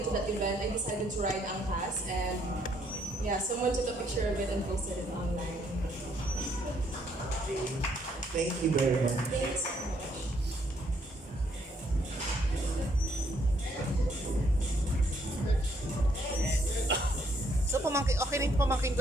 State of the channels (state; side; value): normal; both; correlation 0.69